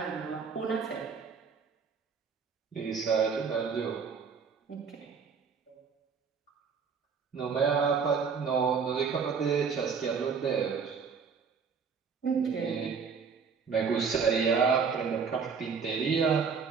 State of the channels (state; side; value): quieter; left; 5.9 dB